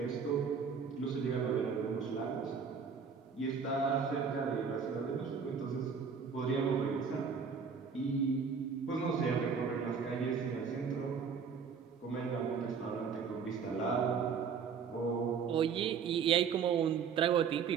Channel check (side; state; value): left; quieter; 6.2 dB